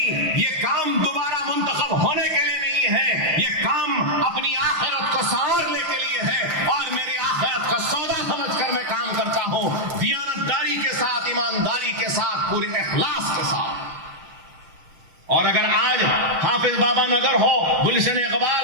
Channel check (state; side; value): late; left; 6.3 ms